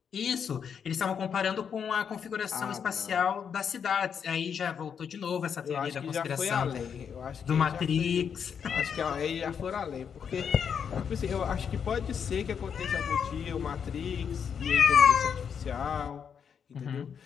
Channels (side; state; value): right; quieter; 7.3 dB